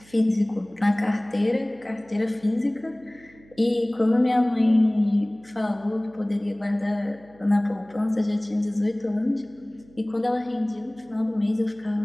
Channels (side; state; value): right; noise; hum, 26 dB below the sound